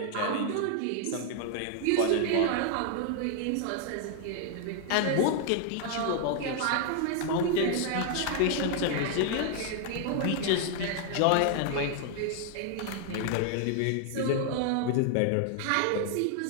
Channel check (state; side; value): different; both; correlation 0.00